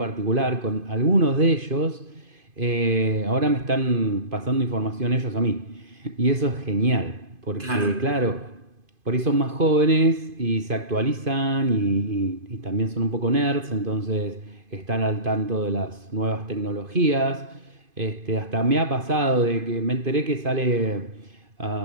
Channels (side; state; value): left; late; 2.5 ms